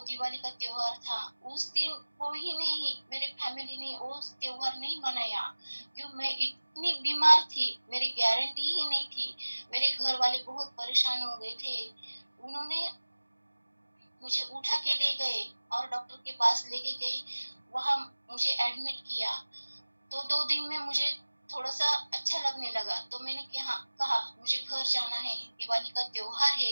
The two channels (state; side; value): inverted; both; correlation -1.00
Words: दिवाली का त्योहार था, उस दिन कोई नहीं, मेरे फैमिली ने वो त्योहार नहीं मनाया। क्यों? मैं इतनी बीमार थी, मेरी गारंटी ही नहीं थी। मेरे घर वाले बहुत परेशान हो गए थे। उन्होंने मुझे उठा के ले गए और डॉक्टर के पास लेके गए, वहां मुझे एडमिट किया। तो 2 दिन में मुझे थोड़ा सा अच्छा लगने लगा, तो मैंने कहा मुझे घर जाना है, दिवाली का त्योहार है,